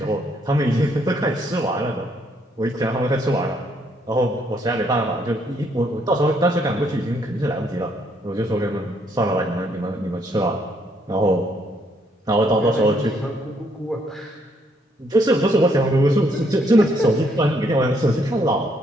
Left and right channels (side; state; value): both; normal; correlation 0.70